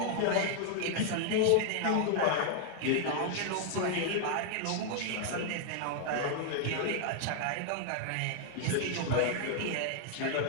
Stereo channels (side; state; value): both; different; correlation 0.00